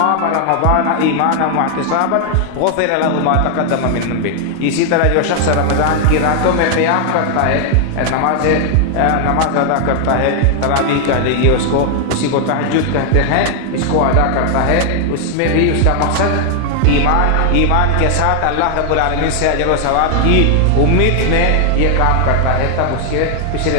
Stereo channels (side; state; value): both; different; correlation 0.00